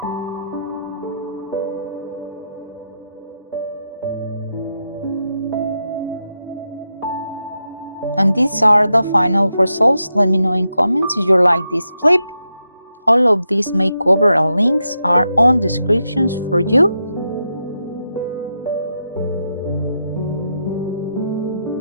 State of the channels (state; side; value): inverted; both; correlation -0.85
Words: And these are the final results. Let me know in comments if you like this flip. All of these makeover links are on descriptions for you.